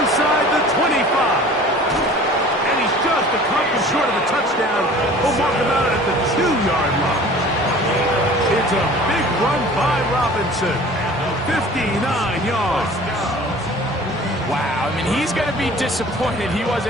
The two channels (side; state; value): both; normal; correlation 0.45